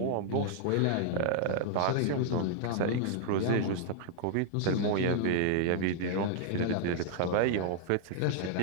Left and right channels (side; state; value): both; different; correlation -0.01